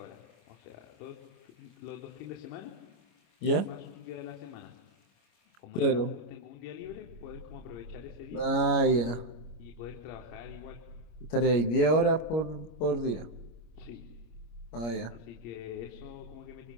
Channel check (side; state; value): right; late; 25 ms